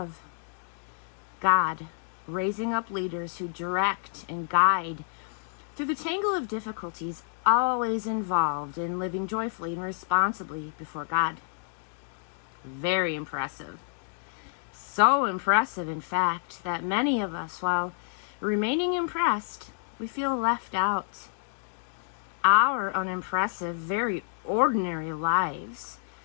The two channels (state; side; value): silent; right; digital silence